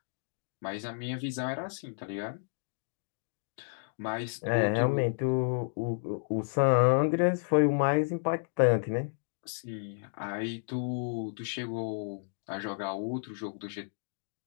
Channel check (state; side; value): silent; right; digital silence